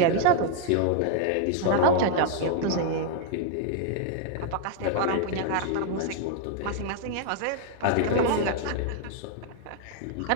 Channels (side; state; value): both; different; correlation 0.00